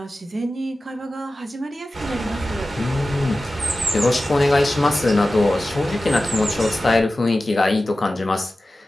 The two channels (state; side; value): normal; both; correlation 0.95